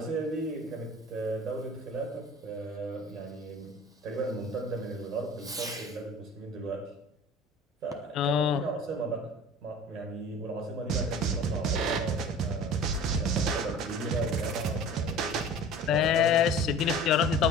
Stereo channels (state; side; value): normal; both; correlation 0.41